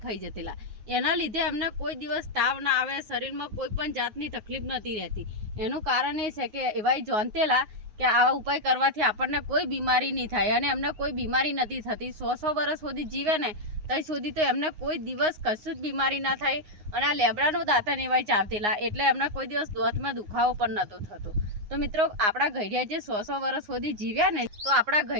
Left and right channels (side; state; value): left; late; 9.6 ms